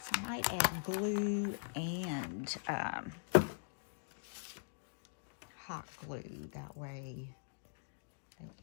I might add glue and hot glue. That way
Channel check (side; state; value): right; silent; digital silence